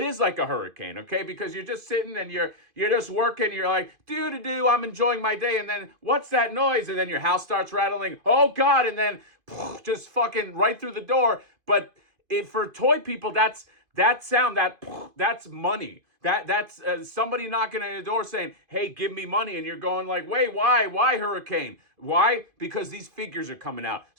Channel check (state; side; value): late; left; 2.5 ms